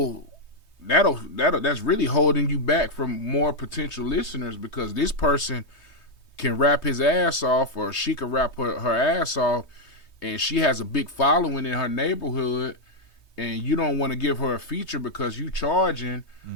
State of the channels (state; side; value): late; right; 3.2 ms